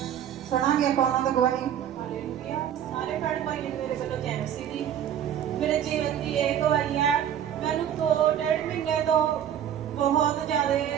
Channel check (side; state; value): left; quieter; 9.8 dB